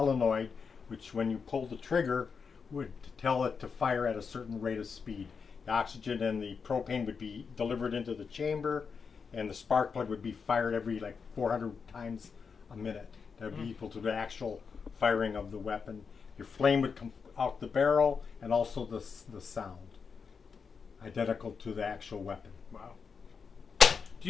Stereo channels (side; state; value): right; quieter; 5.7 dB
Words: which when you pull the trigger would tell it to fire at a certain rate of speed. The oxygen and the propane would be delivered into the chamber, and the spark plug would be fired every like 400 times a minute. That would be equal to the actual firing of the weapon. Your flame would come out the barrel, and also the sound, identical to the actual weapon. Wow. Do